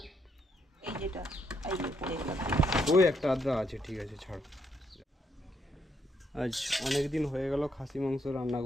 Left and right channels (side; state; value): both; normal; correlation 0.76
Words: ওই একটা আদ্রা আছে, ঠিক আছে ছাড়। আজ অনেক দিন হয়ে গেল খাসি মাংস রান্না